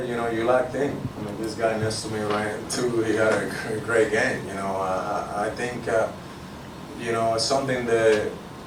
know, you locked in. I mean, this guy next to me right too, he had a great game. You know, I think you know, it's something that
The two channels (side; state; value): both; identical; correlation 1.00